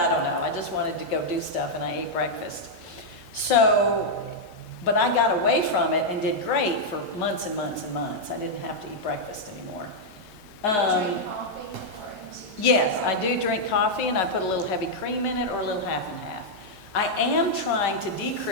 don't know. I just wanted to go do stuff, and I ate breakfast. So, but I got away from it and did great for months and months and months. I didn't have to eat breakfast anymore. Drink coffee or Yes, I do drink coffee, and I put a little heavy cream in it or a little half and half. I am trying to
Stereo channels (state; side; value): late; left; 3.4 ms